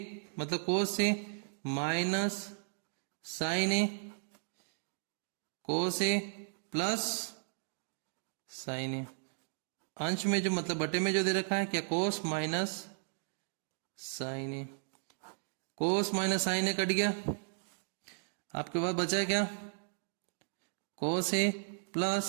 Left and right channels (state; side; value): silent; left; digital silence